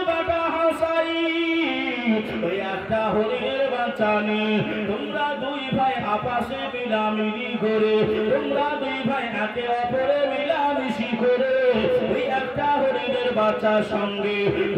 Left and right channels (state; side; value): identical; both; correlation 1.00